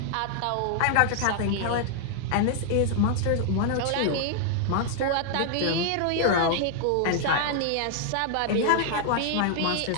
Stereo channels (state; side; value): different; both; correlation 0.00